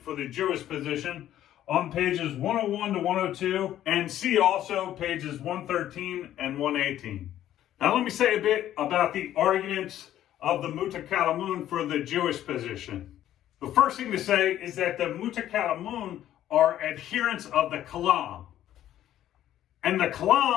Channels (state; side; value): quieter; right; 12.2 dB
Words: for the Jewish position on pages 101 to 102, and see also pages 113 and 118. Now let me say a bit about the arguments of the Mutakalamun for the Jewish position. The first thing to say is that the Mutakalamun are adherents of the Kalam. And the